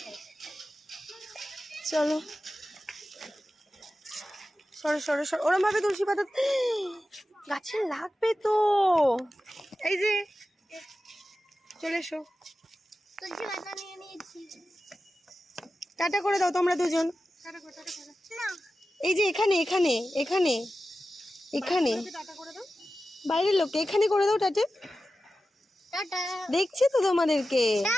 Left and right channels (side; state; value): both; normal; correlation 0.93